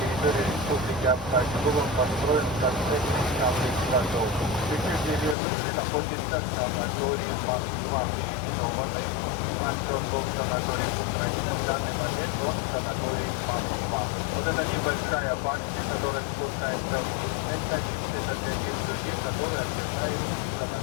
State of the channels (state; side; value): drops out; right; at 5.4 s